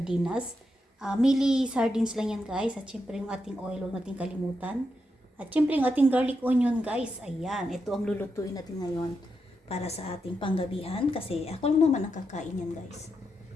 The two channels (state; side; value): normal; both; correlation 0.85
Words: Mili sardines lang yan guys. At syempre yung ating oil, huwag natin kalimutan. At syempre yung ating garlic onion guys. Ayan, ito ang lulutuin natin ngayon para sa ating panggabihan. Kasi ako lang naman ang kakain yan guys.